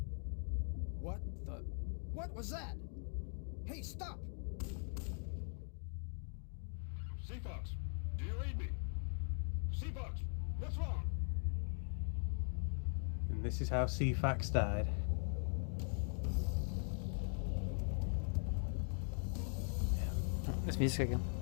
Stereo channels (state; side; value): silent; right; 50 dB below the other